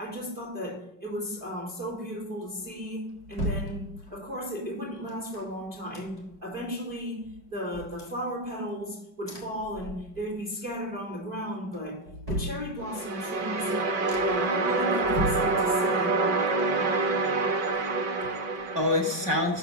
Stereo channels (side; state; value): left; late; 5.3 ms